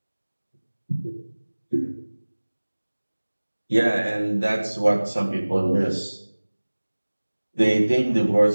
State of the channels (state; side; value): inverted; both; correlation -1.00